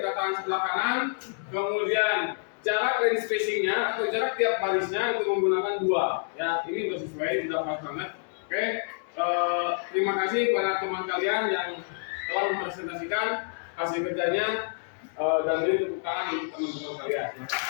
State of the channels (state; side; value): silent; right; digital silence